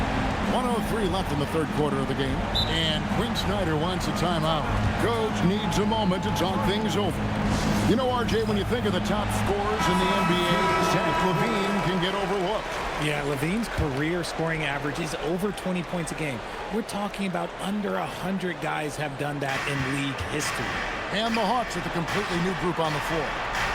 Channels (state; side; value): identical; both; correlation 1.00